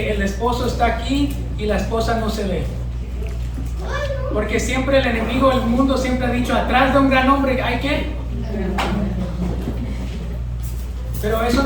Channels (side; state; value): both; identical; correlation 1.00